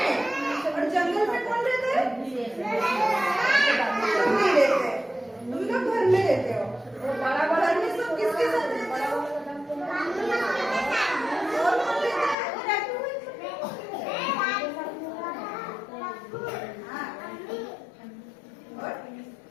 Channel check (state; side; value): drops out; right; at 12.4 s